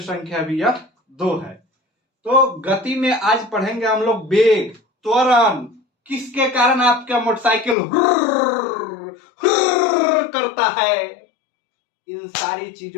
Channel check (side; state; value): right; drops out; at 7.8 s